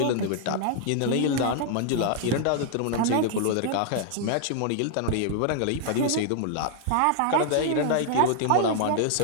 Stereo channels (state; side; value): different; both; correlation 0.00